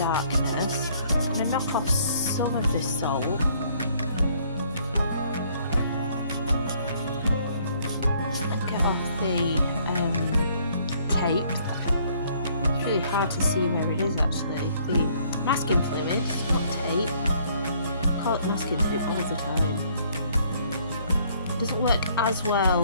I'm going to knock off some of this salt. And get off the tape. It's really hard to see where it is actually. The masking fluid, not tape. I call it masking fluid all the time. It doesn't work as well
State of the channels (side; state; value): both; inverted; correlation -0.63